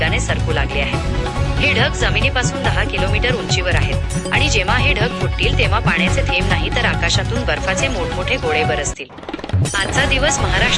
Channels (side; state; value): both; identical; correlation 1.00